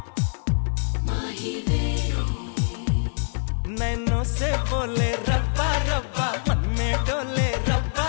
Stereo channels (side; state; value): right; silent; 62 dB below the other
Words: नैनों से बोले रब्बा रब्बा मन में डोले रब्बा